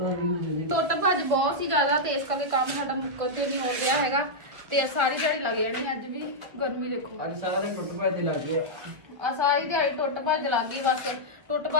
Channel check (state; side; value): late; left; 1.5 ms